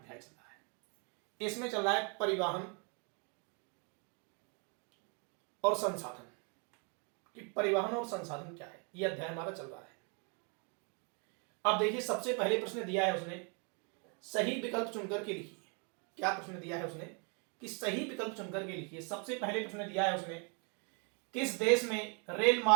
चल रहा है। इसमें चल रहा है परिवहन और संसाधन, कि परिवहन और संसाधन क्या है, यह अध्याय हमारा चल रहा है। अब देखिए, सबसे पहले प्रश्न दिया है उसने सही विकल्प चुनकर के लिखिए। क्या प्रश्न दिया है उसने कि सही विकल्प चुनकर के लिखिए। सबसे पहले प्रश्न दिया है उसने किस देश में रेल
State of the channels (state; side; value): quieter; left; 35.9 dB